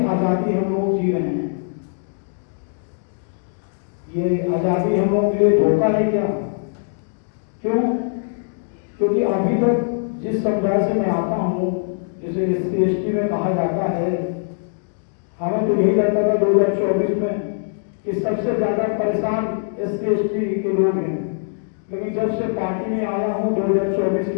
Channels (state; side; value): silent; right; digital silence